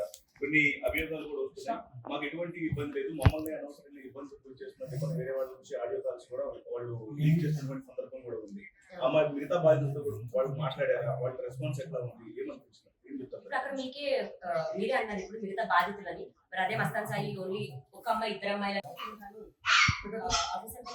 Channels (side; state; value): both; identical; correlation 1.00